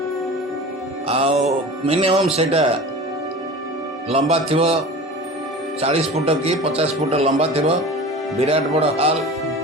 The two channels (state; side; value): normal; both; correlation 0.36